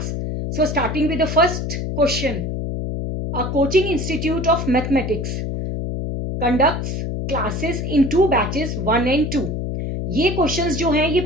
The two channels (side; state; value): left; noise; hum, 3 dB below the sound